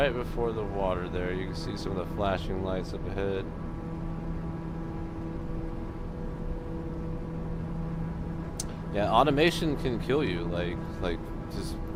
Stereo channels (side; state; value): both; identical; correlation 1.00